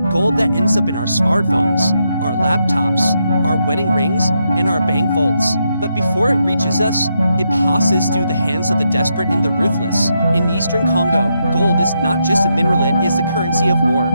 gold that ends up in our smartphones, our laptops, our wedding rings, and our bank vaults. But before it reaches us, it passes through the hands of the desperate and the ruthless. In Eastern Congo, gold is not just a mineral, it is the currency of war,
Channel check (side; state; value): both; inverted; correlation -0.81